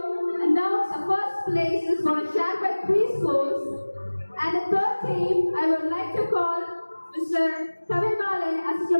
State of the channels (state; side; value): inverted; both; correlation -1.00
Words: announce the first place is going to share by 3 schools. And the third team, I would like to call Mr. Kavin Bale,